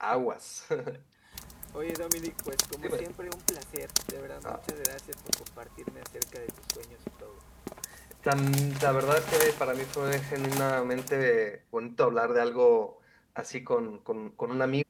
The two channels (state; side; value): identical; both; correlation 1.00